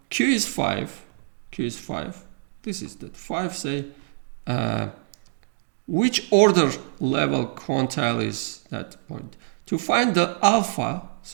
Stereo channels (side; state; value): left; silent; digital silence